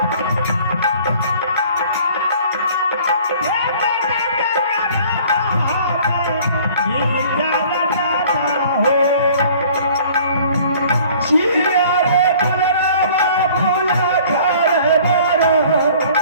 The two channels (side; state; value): both; inverted; correlation -0.51